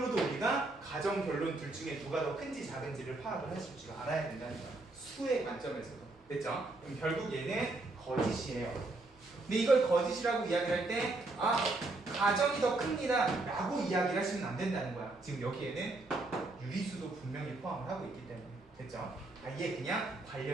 우리가 가정 결론 둘 중에 누가 더 큰지 작은지를 파악을 하실 줄 알아야 된다는 거야. 수의 관점에서도. 됐죠? 그럼 결국 얘는 거짓이에요. 근데 이걸 거짓이라고 이야기할 때 가정이 더 큽니다 라고 이야기를 하시면 안 된다는 거야. 지금 여기에는 유리수도 분명히 포함을 하고 있기 때문에. 됐죠? 이게 그냥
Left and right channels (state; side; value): quieter; left; 3.0 dB